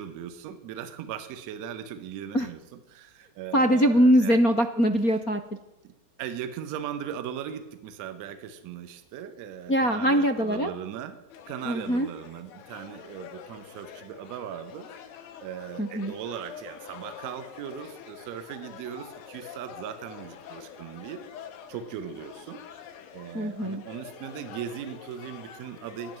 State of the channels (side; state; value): right; late; 4.3 ms